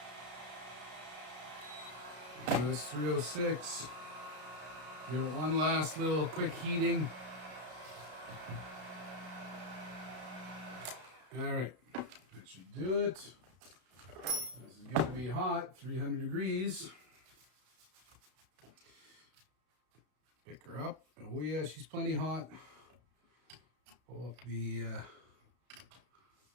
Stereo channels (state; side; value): late; left; 33 ms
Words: That's 306. Give it one last little quick heating. All right, that should do it. This is going to be hot, 300 degrees. Pick her up. Oh yeah, she's plenty hot. Pull up the,